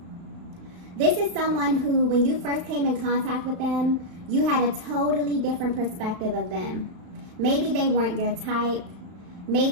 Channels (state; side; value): late; left; 35 ms